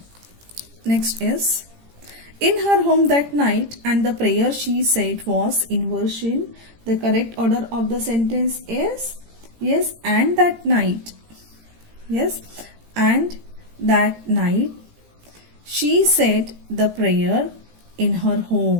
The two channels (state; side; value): late; left; 18 ms